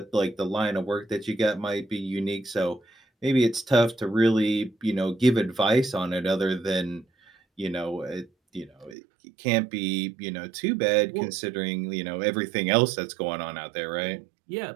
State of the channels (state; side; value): drops out; left; at 9.0 s